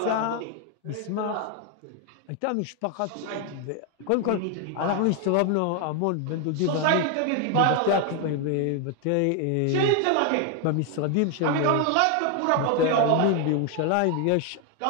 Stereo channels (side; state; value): both; different; correlation 0.01